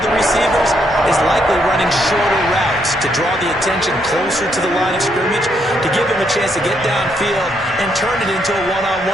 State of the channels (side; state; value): both; normal; correlation 0.75